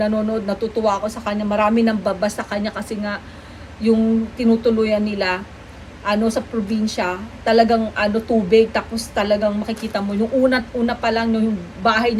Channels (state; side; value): identical; both; correlation 1.00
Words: natutuwa ako sa kanya. Marami nang babas sa kanya kasi nga yung tinutuluyan nila sa probinsya, talagang tubig, tapos talagang makikita mo yung una pa lang yung bahay